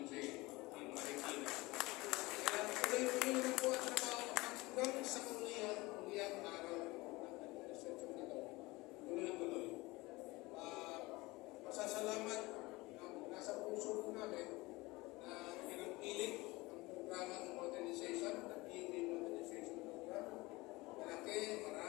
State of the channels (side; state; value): right; quieter; 21.8 dB